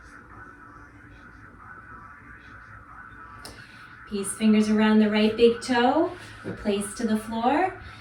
Peace fingers around the right big toe, replace to the floor.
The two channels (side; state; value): both; identical; correlation 1.00